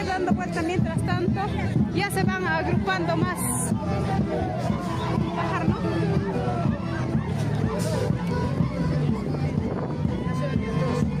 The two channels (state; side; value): identical; both; correlation 1.00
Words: dando vueltas mientras tanto. Ya se van agrupando más. Bajar, ¿no?